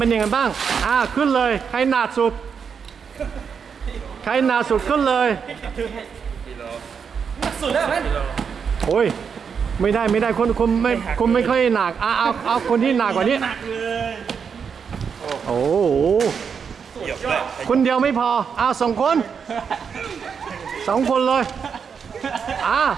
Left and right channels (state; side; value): quieter; left; 6.5 dB